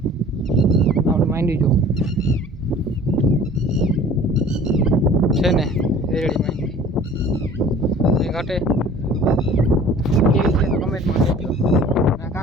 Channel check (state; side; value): normal; both; correlation 0.48